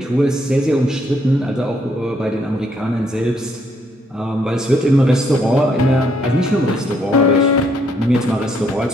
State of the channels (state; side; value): normal; both; correlation 0.71